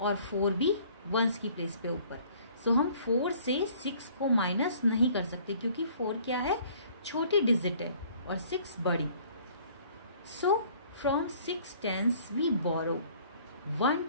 4 भी वंस की प्लेस पे ऊपर. सो हम 4 से 6 को माइनस नहीं कर सकते क्योंकि 4 क्या है, छोटी डिजिट है और 6 बड़ी. सो From 6 tens we borrow 1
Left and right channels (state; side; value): inverted; both; correlation -0.55